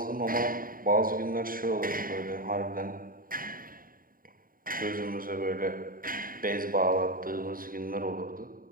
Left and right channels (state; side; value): late; left; 0.41 ms